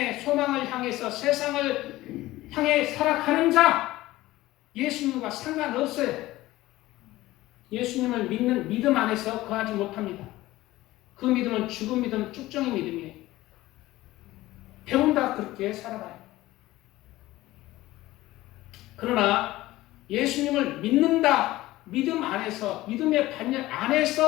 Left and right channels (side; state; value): right; quieter; 17.2 dB